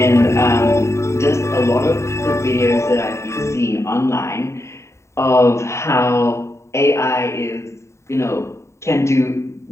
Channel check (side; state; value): right; late; 0.14 ms